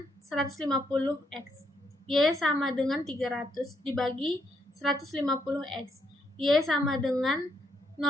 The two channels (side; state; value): both; normal; correlation 0.75